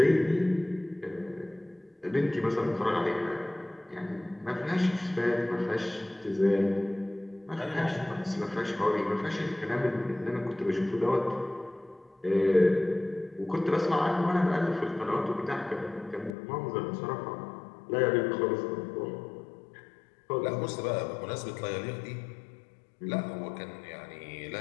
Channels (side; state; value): right; drops out; at 16.4 s